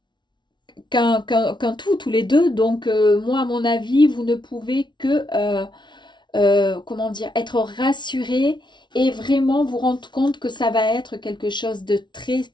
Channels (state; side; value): late; right; 0.22 ms